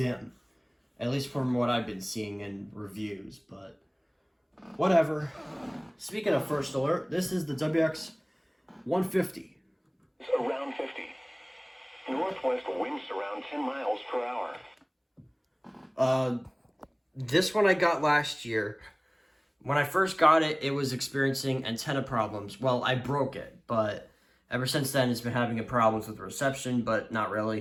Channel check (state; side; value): identical; both; correlation 1.00